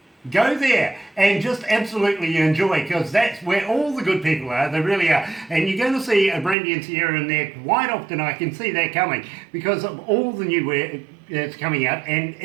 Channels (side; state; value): left; drops out; at 6.6 s